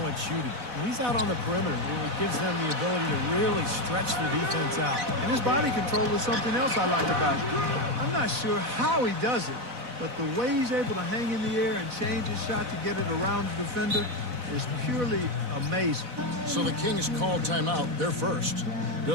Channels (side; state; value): left; late; 4.1 ms